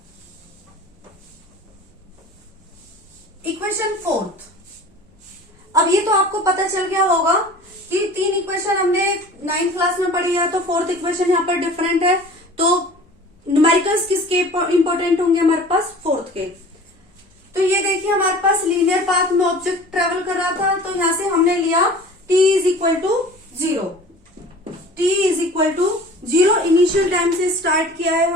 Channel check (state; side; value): normal; both; correlation 0.43